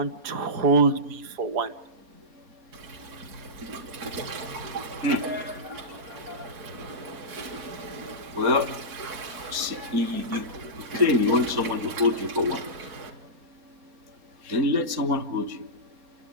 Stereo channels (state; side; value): late; left; 4.2 ms